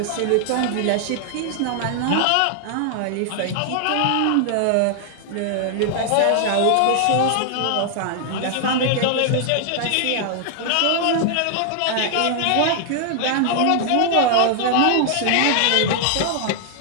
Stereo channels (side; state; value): both; different; correlation 0.00